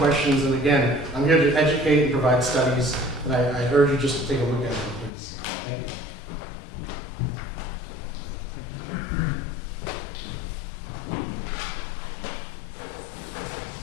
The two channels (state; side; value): drops out; right; at 5.1 s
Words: And again, I'm here to educate and provide studies. And I urge you just to take a look at them, please. Thank you.